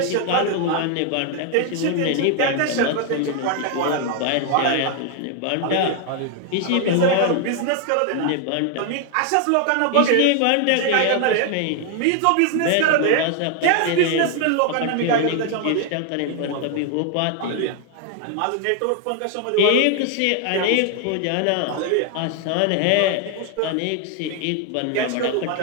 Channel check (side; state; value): both; different; correlation 0.00